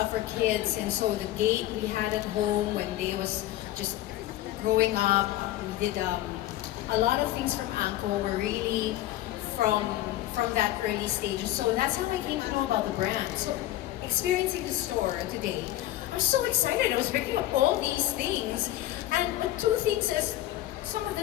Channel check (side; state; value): right; quieter; 14.6 dB